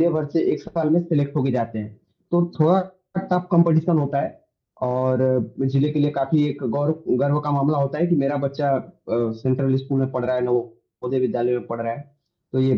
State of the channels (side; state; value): both; identical; correlation 1.00